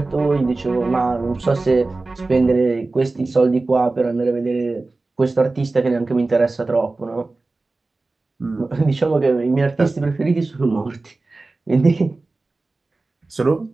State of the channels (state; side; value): quieter; left; 3.4 dB